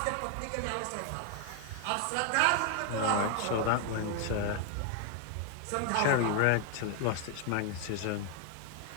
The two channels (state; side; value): different; both; correlation 0.00